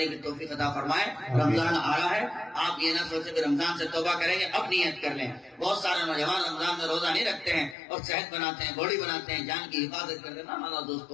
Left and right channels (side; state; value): right; drops out; at 7.8 s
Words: کی توفیق عطا فرمائے. رمضان آ رہا ہے, آپ یہ نہ سوچیں کہ رمضان سے توبہ کریں گے, اب نیت کر لیں. بہت سارے نوجوان رمضان میں روزہ نہیں رکھتے ہیں اور صحت بناتے ہیں, باڈی بناتے ہیں, جان کی حفاظت کرتے ہیں. مانا